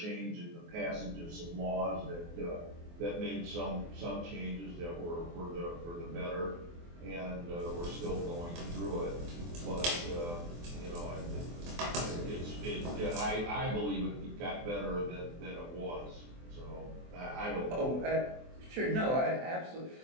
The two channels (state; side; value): late; left; 24 ms